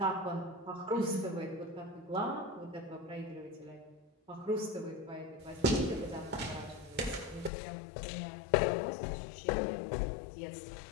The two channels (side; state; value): right; drops out; at 7.5 s